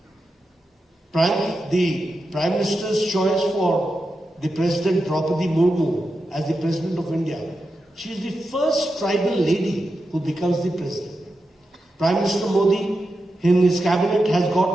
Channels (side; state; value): both; normal; correlation 0.89